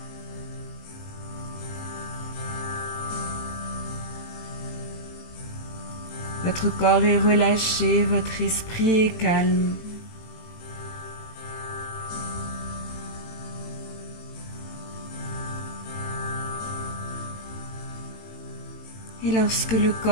Votre corps est relâché, votre esprit est calme. Et lorsque le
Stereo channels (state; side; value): late; right; 18 ms